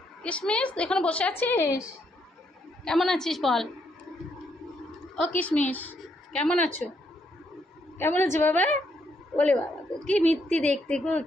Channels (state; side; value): normal; both; correlation 0.75